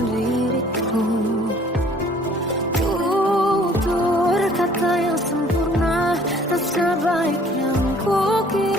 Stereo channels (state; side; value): normal; both; correlation 0.56